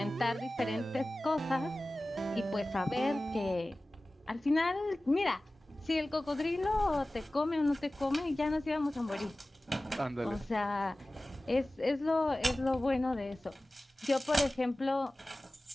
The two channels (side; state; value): both; normal; correlation 0.97